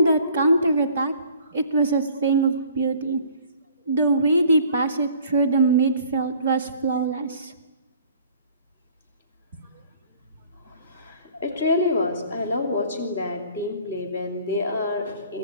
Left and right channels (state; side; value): inverted; both; correlation -0.53